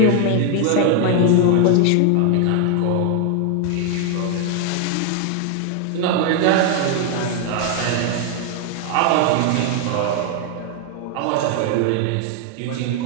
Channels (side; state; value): both; different; correlation 0.00